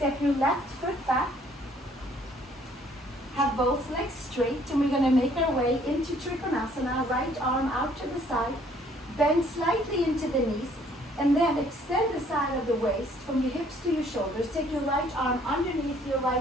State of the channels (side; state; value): both; normal; correlation 0.61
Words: your left foot back. Have both legs straight, and we're gonna make our way into Trikonasana, right arm out to the side, bend slightly into the knees, and then extend the side of the waist from your hips to your shoulders. Take your right arm underneath your